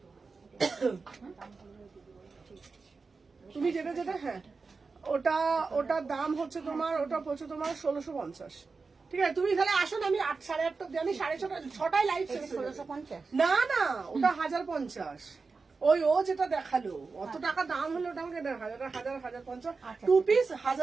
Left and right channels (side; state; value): left; quieter; 4.4 dB